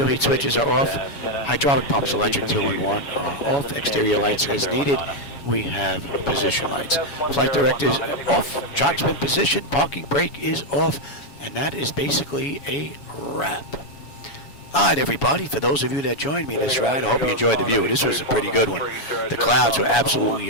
heat switches are off. Hydraulic pumps electric 2 and 1 are off. Exterior lights as needed. We have position lights. Flight directors off. Chocks been positioned. Parking brake is off. And that is basically a wrap. Alright everybody, for those of you that joined me this ride, I hope you enjoyed the view. This was a pretty good one. The clouds were absolutely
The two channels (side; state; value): right; late; 7.1 ms